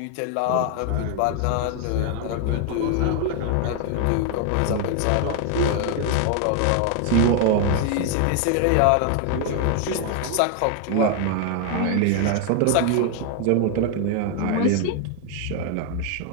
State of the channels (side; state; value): both; different; correlation 0.00